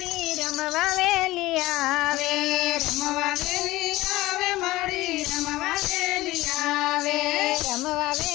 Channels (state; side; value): quieter; right; 18.2 dB